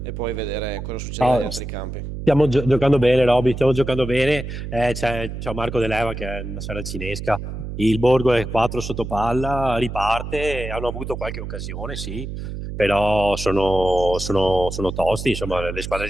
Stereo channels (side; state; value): right; noise; hum, 7 dB below the sound